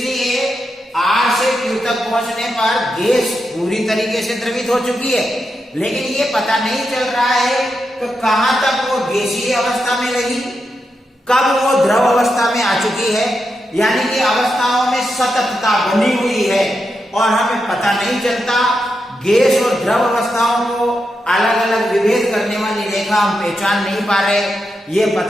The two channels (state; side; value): normal; both; correlation 0.86